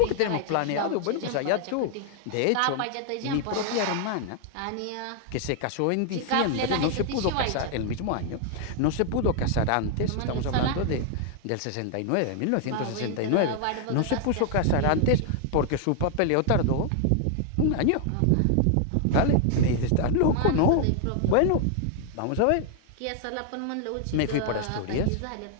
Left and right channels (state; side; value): different; both; correlation 0.00